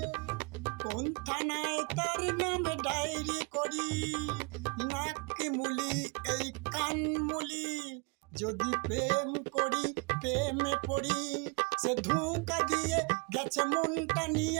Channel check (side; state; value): left; quieter; 31.7 dB